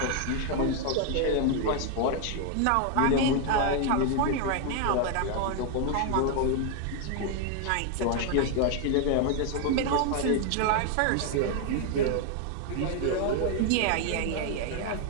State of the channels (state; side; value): different; both; correlation 0.00